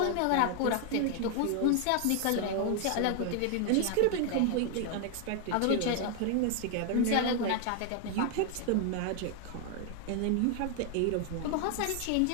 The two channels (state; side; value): different; both; correlation 0.00